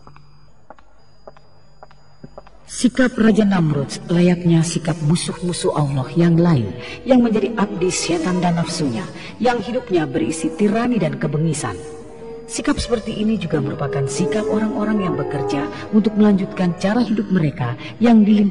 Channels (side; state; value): both; identical; correlation 1.00